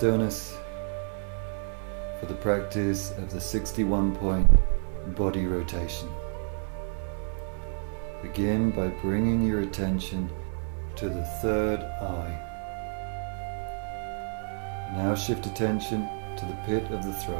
for the practice of the 61-point body rotation. Begin by bringing your attention to the third eye. Now shift attention to the pit of the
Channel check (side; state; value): left; silent; 58 dB below the other